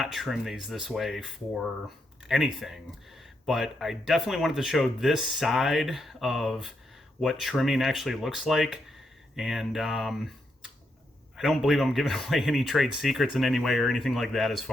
trim these this way for anything, but I definitely wanted to show this side of what trimming actually looks like. And I don't believe I'm giving away any trade secrets in any way or anything like that as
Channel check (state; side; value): normal; both; correlation 0.80